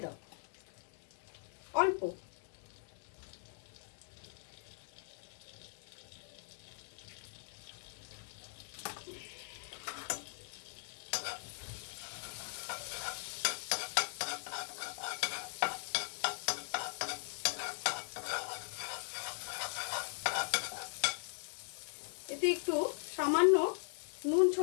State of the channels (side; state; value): right; silent; digital silence